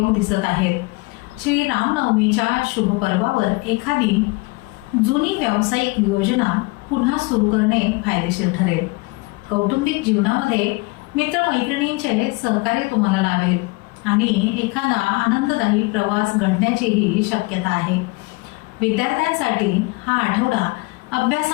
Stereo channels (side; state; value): right; quieter; 25.6 dB